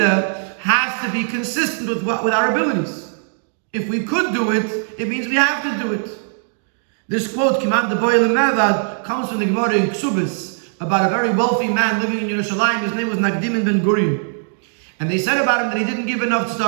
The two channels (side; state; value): left; silent; 66 dB below the other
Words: has to be consistent with our abilities. If we could do it, it means we have to do it. This quote, Kiman de Boyle Mevad, comes from the Gemara in Ksubis about a very wealthy man living in Yerushalayim. His name was Nagdim ben Gourarie. And they said about him that he didn't give enough